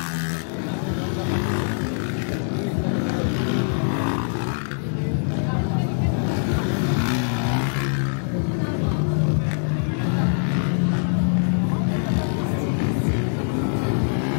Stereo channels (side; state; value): right; silent; digital silence